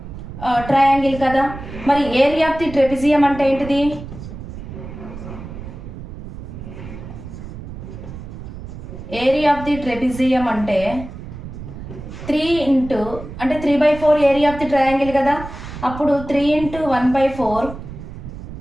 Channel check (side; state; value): right; noise; rumble, 11 dB below the sound